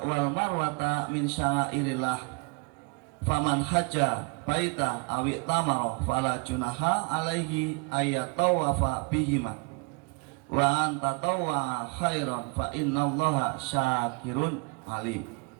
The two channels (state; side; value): quieter; left; 30.8 dB